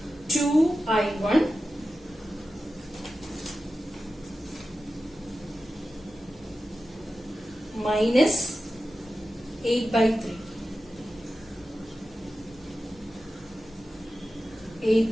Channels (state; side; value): normal; both; correlation 0.93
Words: 2I1 minus 8 by 3.